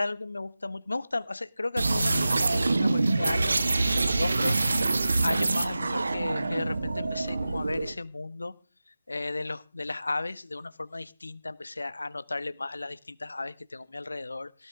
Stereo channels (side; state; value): both; inverted; correlation -0.95